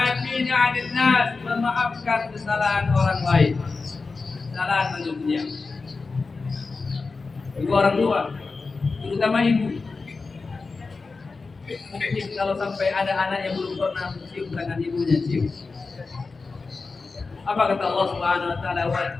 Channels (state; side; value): quieter; right; 4.1 dB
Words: 'anil nas, memaafkan kesalahan orang lain. Kesalahan manusia. Ibu orang tua, terutama ibu. Mungkin kalau sampai ada anak yang belum pernah mencium tangan ibunya, cium. Apa kata Allah Subhanahu wa taala?